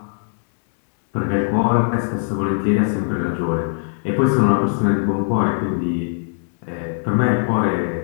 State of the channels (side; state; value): right; silent; digital silence